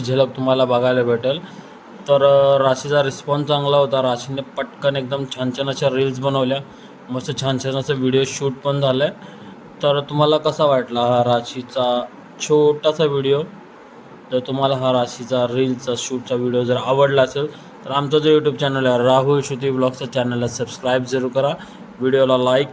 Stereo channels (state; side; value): identical; both; correlation 1.00